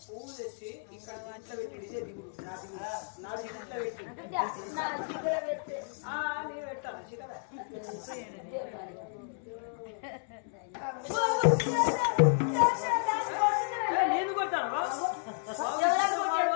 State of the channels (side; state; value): right; silent; 56 dB below the other